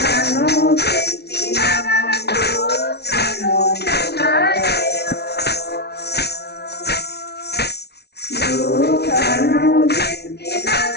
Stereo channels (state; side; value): late; right; 0.48 ms